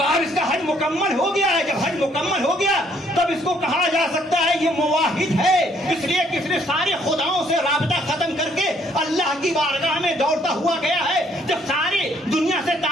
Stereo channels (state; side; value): normal; both; correlation 0.65